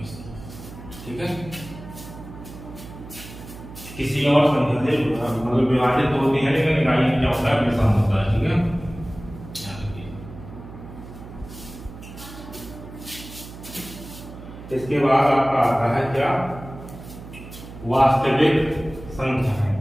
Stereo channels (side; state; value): right; noise; hum, 15 dB below the sound